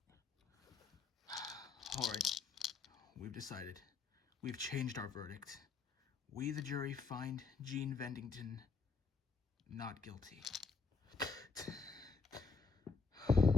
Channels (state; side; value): quieter; right; 4.8 dB